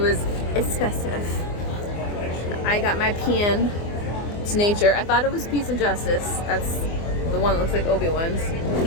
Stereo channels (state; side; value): late; right; 24 ms